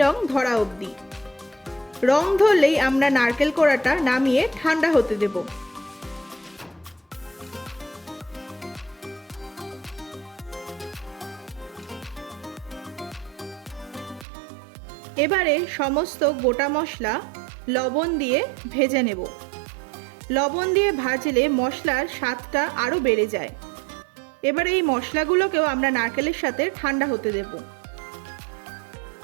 রং ধরা অবধি। রং ধরলেই আমরা নারকেল কোড়াটা নামিয়ে ঠান্ডা হতে দেব। এবারে সমস্ত গোটা মশলা লবণ দিয়ে ভেজে নেব। লবণ দিয়ে ভাজলে মশলার স্বাদটা আরও বেড়ে যায়। এবারে এই মশলাগুলোকেও আমরা নারকেলের সাথে ঠান্ডা হতে দেব।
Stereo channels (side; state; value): left; drops out; at 14.2 s